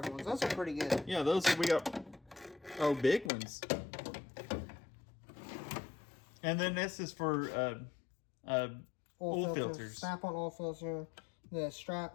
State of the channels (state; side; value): drops out; right; at 3.3 s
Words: ones. Those are pretty good. Yeah, those we got. Oh, big ones. And then this is for oil filters. Snap-on oil filter. The strap.